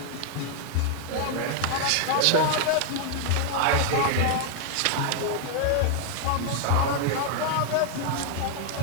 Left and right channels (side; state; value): both; different; correlation 0.00